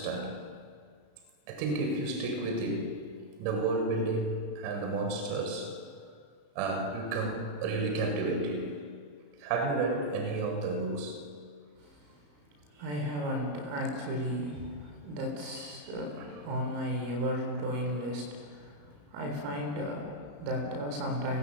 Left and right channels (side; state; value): left; late; 34 ms